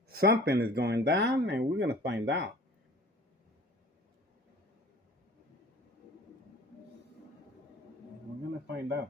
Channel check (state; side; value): normal; both; correlation 0.46